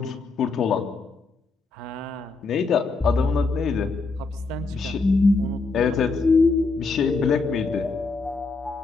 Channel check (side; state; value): right; quieter; 4.0 dB